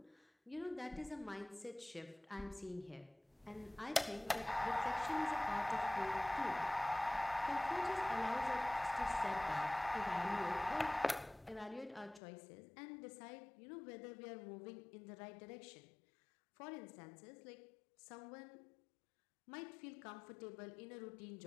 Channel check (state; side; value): drops out; right; at 12.2 s